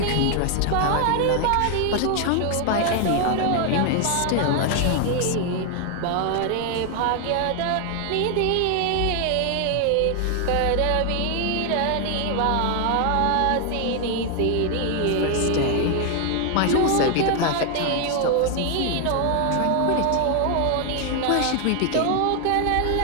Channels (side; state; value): both; different; correlation 0.00